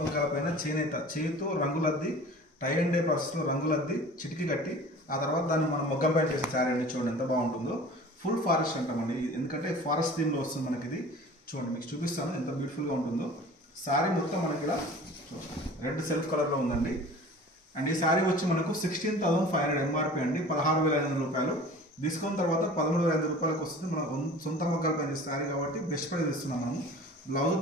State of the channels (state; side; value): normal; both; correlation 0.42